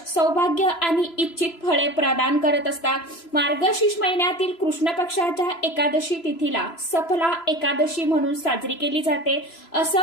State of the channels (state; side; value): late; right; 3.0 ms